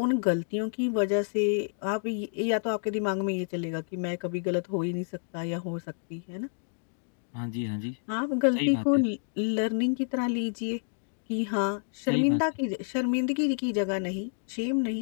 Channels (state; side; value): silent; right; digital silence